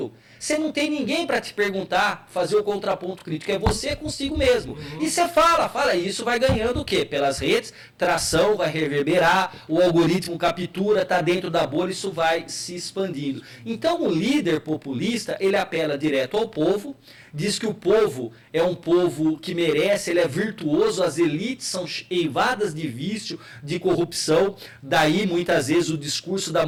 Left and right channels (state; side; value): identical; both; correlation 1.00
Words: você não tem ninguém para te perguntar, fazer o contraponto crítico, é você consigo mesmo. E você fala, e isso vai ganhando o quê? Pelas redes, tração, vai reverberar, o algoritmo captura, está dentro da bolha, isso vai se expandindo. Então o líder populista, ele apela direto ao povo, diz que o povo é um povo que merece, ele é virtuoso, as elites são eivadas de vício, de corrupção, daí muitas vezes o discurso da